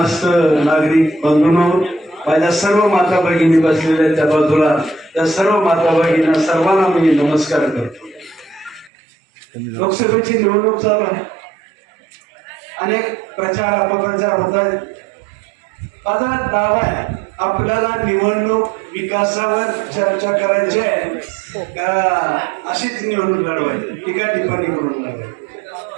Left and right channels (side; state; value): left; drops out; at 8.9 s